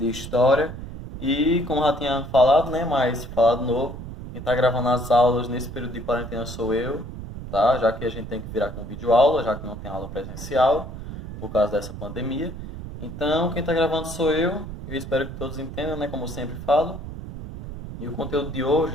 História. E, como já tinha falado, né, mas falado novo, quem tá gravando as aulas nesse período de quarentena sou eu, tá? Já que a gente tem que virar com videoaula, já que não tem aula presencial, por causa dessa pandemia. Então, quem tá gravando sou eu espero que todos entendam, né, como eu sempre falo. E o conteúdo de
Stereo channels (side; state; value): right; noise; rumble, 10 dB below the sound